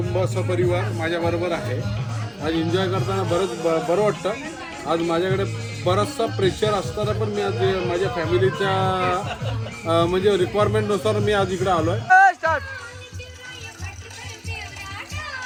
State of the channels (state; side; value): identical; both; correlation 1.00